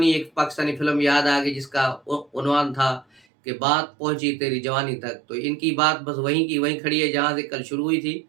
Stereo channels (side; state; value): left; drops out; at 3.2 s